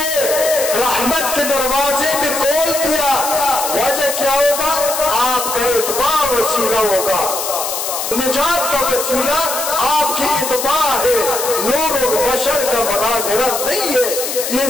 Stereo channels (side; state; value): left; noise; hiss, 3 dB below the sound